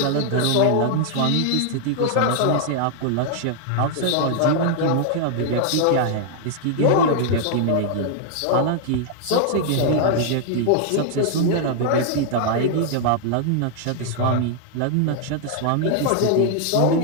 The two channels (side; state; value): both; different; correlation 0.00